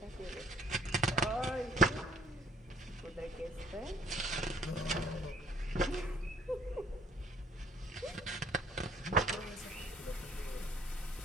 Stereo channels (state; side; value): normal; both; correlation 0.58